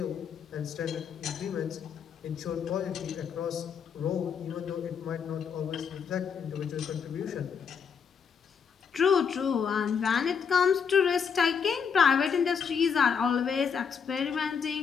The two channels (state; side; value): quieter; right; 6.6 dB